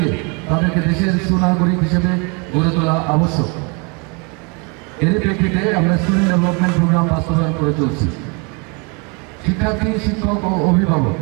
তাদেরকে দেশের সুনাগরিক হিসেবে গড়ে তোলা আবশ্যক। এর প্রেক্ষিতে আমরা স্টুডেন্ট ডেভেলপমেন্ট প্রোগ্রাম বাস্তবায়ন করে চলছি। শিক্ষার্থী, শিক্ষক ও অভিভাবক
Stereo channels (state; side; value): quieter; left; 32.3 dB